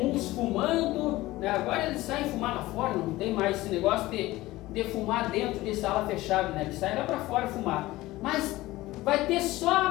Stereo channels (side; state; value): right; quieter; 18.0 dB